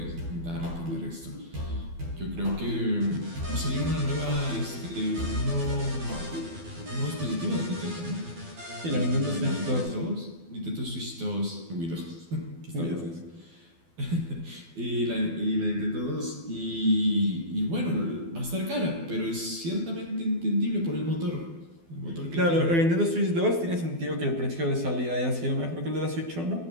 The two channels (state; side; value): late; left; 12 ms